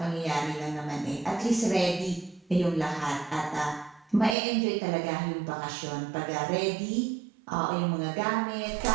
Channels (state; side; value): drops out; left; at 4.4 s